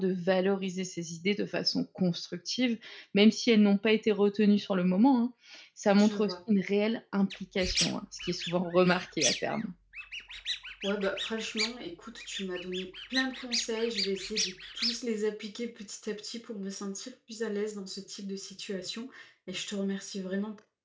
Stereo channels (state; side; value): identical; both; correlation 1.00